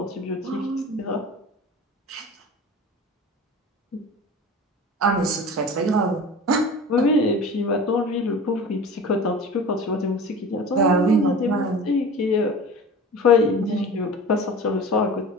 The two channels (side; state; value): both; normal; correlation 0.37